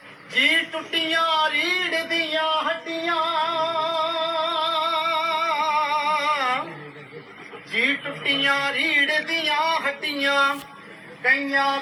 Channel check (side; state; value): both; identical; correlation 1.00